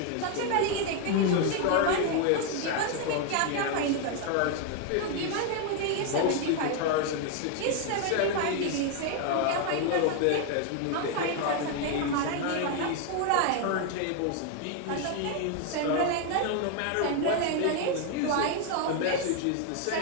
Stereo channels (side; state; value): both; different; correlation 0.01